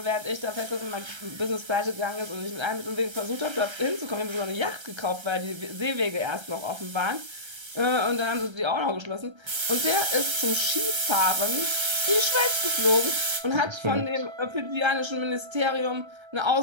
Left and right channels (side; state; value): left; late; 1.3 ms